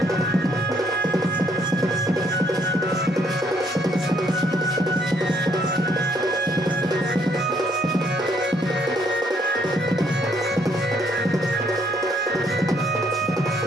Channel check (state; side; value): normal; both; correlation 0.68